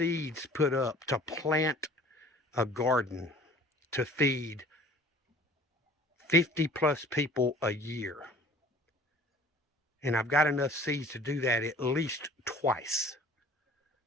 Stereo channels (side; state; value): both; normal; correlation 0.48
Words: put up to plant a garden to feed 50 plus people a year. And I've got enough seeds to do that at least twice.